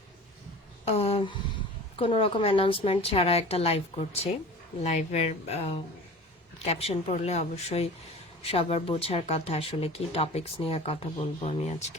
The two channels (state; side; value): normal; both; correlation 0.39